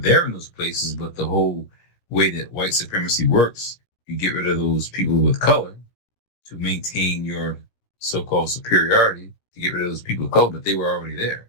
in those places, but the whole way that white supremacy works, you get rid of those people with color to maintain your so-called superiority, to get rid of those people of color, but they were already there.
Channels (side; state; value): right; late; 17 ms